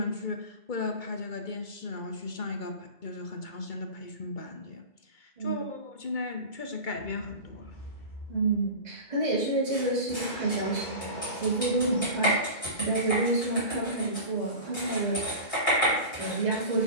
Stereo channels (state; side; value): late; right; 2.2 ms